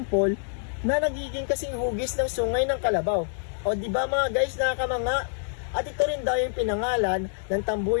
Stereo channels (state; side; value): silent; right; digital silence